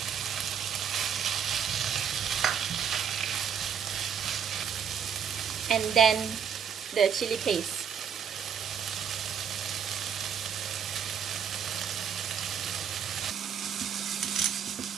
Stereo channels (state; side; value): quieter; left; 7.6 dB